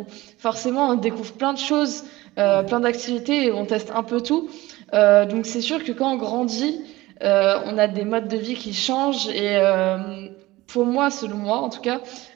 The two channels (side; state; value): left; quieter; 18.9 dB